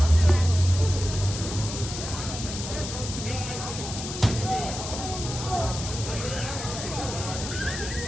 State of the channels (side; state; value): left; noise; hiss, 7 dB below the sound